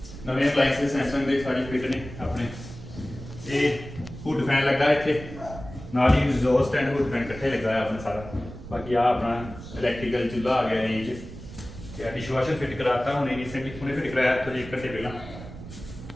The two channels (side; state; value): right; noise; rumble, 13 dB below the sound